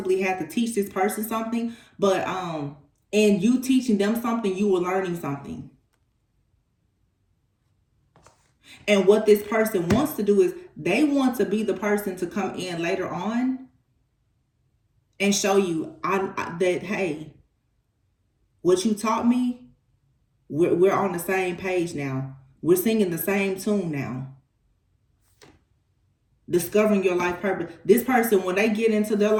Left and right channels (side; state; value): both; identical; correlation 1.00